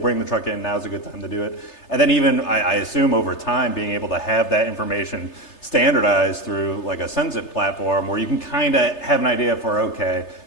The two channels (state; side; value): late; right; 3.3 ms